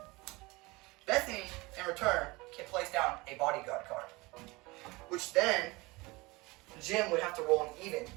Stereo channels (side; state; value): left; quieter; 23.3 dB